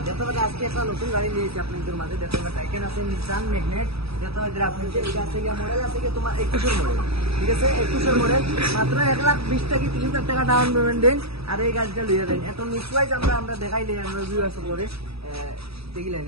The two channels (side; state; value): left; late; 0.77 ms